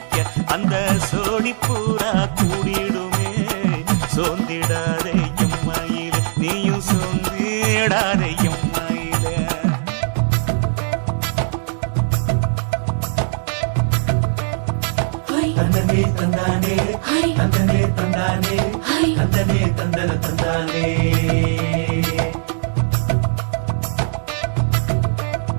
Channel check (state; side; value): silent; left; digital silence